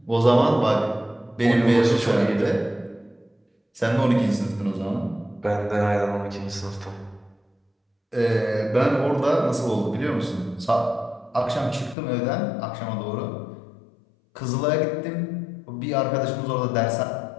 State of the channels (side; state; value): right; drops out; at 12.0 s